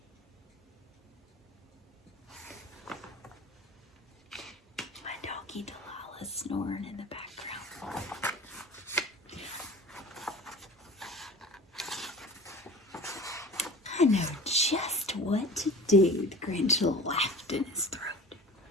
My doggy Delilah's snoring in the background. I know just what to do, the Grinch laughed in his throat.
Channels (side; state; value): both; normal; correlation 0.39